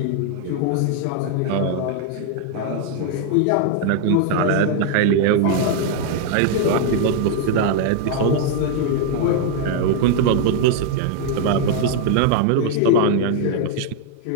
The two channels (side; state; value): both; different; correlation 0.00